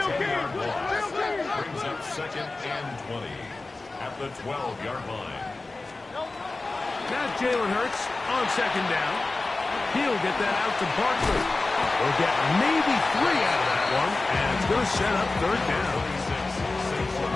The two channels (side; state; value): right; quieter; 3.4 dB